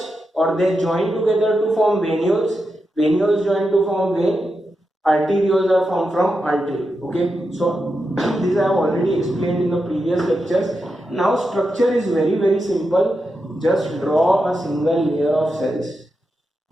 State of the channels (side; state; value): both; normal; correlation 0.88